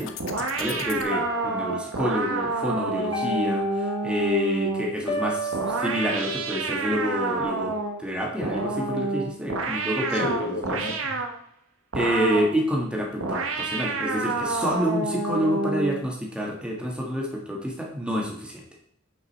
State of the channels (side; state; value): both; normal; correlation 0.42